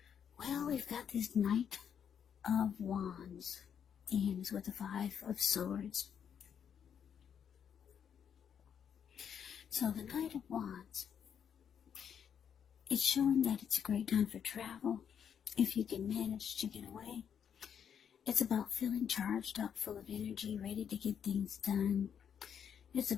Well, we've got this Knight of Wands, and it's with the Five of Swords. So, the Knight of Wands, it's showing that it's a great time for travel, if you can manage to get away. It's about feeling charged up, full of energy, ready to get things done. It's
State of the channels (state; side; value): quieter; right; 8.1 dB